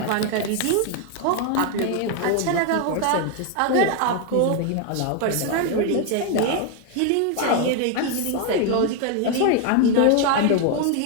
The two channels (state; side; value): different; both; correlation 0.01